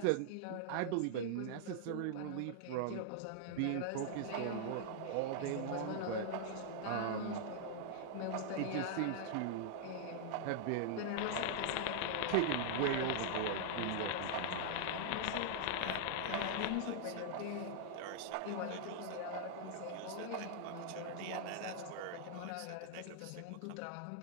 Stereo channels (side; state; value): both; different; correlation -0.01